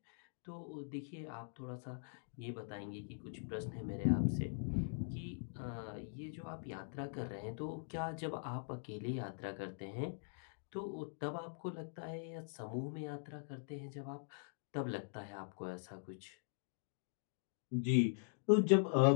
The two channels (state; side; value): silent; right; digital silence